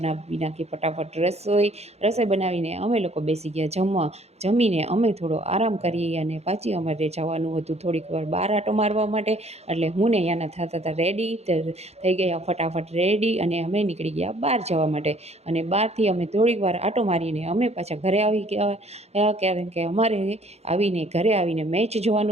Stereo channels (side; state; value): left; late; 0.31 ms